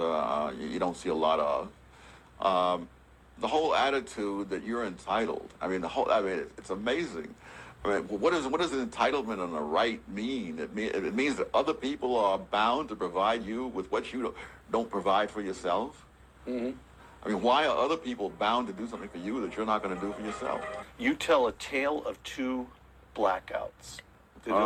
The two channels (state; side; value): identical; both; correlation 1.00